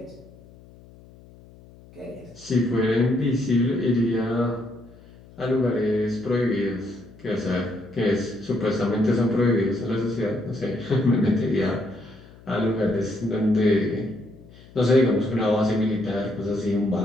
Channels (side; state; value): left; noise; hum, 23 dB below the sound